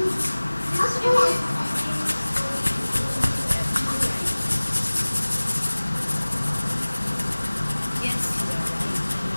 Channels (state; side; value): inverted; both; correlation -1.00